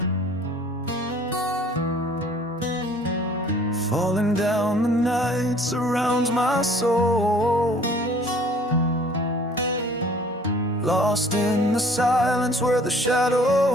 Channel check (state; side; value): normal; both; correlation 0.53